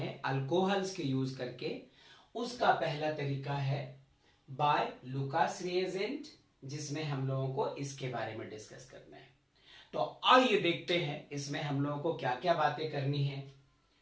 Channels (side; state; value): both; identical; correlation 1.00